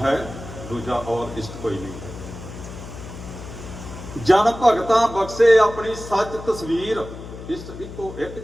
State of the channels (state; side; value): noise; left; hum, 12 dB below the sound